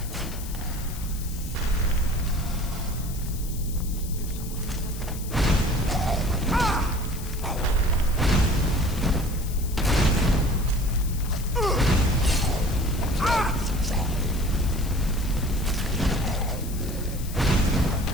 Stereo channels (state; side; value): noise; left; hiss, 14 dB below the sound